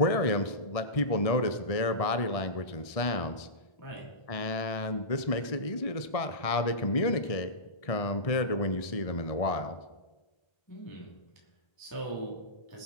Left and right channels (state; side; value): late; right; 1.6 ms